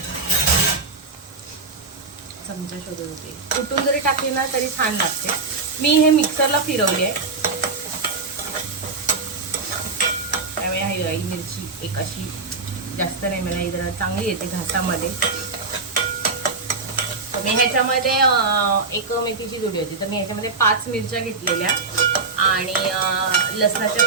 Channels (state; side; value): quieter; left; 4.1 dB